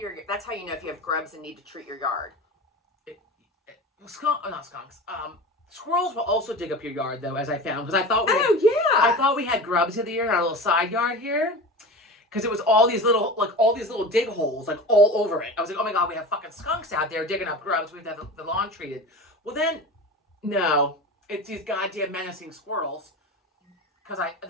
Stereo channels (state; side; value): normal; both; correlation 0.31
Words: That's how you know if you have grubs and need to treat your yard. Not skunks. Squirrels will also dig up your yard though, as I found, because I thought yeah. I thought we had grubs in the year in our little side yard here. Because it was all these little dig holes, like all over it. I was like, oh my God, we have fucking skunks out there digging up grubs. We have to have the lawn treated. Well then, no, it's these goddamn menacing squirrels. Because